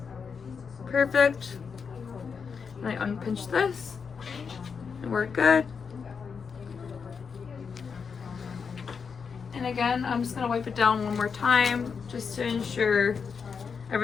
Perfect. And I unpinch this. And we're good. And again, I'm just going to wipe it down one more time just to ensure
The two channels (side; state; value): right; quieter; 5.9 dB